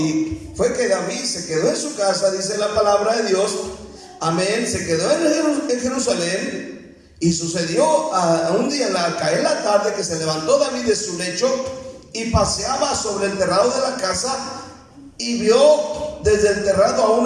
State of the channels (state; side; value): identical; both; correlation 1.00